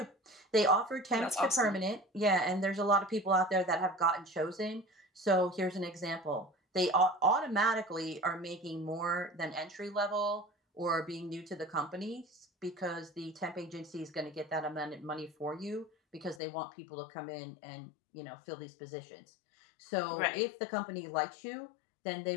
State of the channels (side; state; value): right; drops out; at 16.4 s